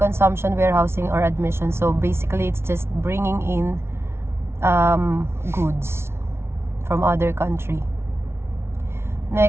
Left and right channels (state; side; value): late; left; 0.12 ms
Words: warehousing, or admission. So basically, it's just bringing in goods from other country.